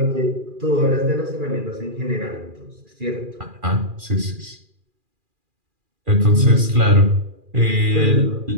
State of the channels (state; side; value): late; left; 2.4 ms